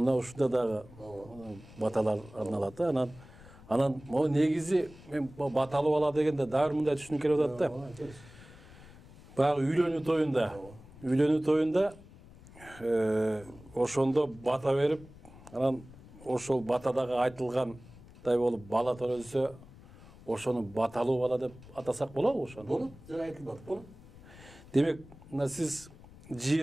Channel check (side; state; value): left; noise; rumble, 20 dB below the sound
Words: ушунда дагы баталар арналат, Анан могу негизи мен баталуу бала дегенде дагы мындай түшүнүк келип атат да. Баягы үйлөнүү тоюнда ошондо бата берип, анан ошол батадагы айтылгандай болуп бала төрөлсө, ошону баталуу бала деп атасак болобу ошону? Болот, жана айтылат, болот. Демек, сиз